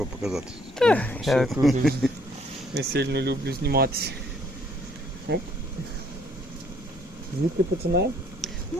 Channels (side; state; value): both; normal; correlation 0.64